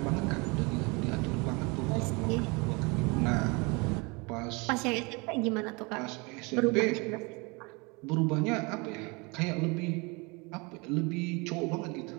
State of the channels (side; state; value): left; quieter; 28.2 dB